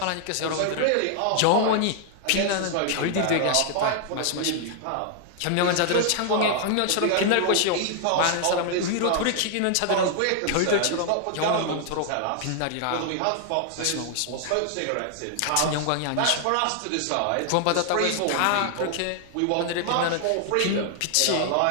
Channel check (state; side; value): different; both; correlation 0.00